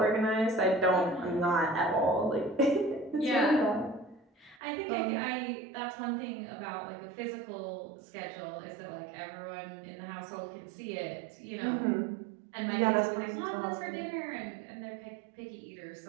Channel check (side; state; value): left; drops out; at 4.5 s